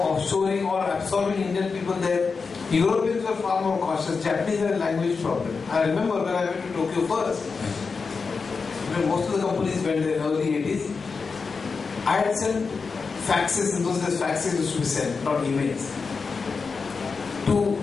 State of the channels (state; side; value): quieter; right; 4.9 dB